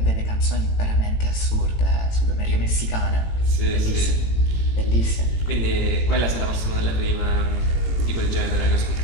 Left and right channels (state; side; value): late; right; 18 ms